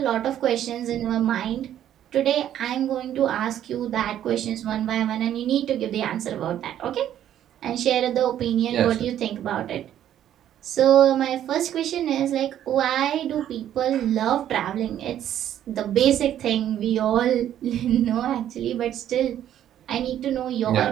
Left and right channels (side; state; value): left; quieter; 11.1 dB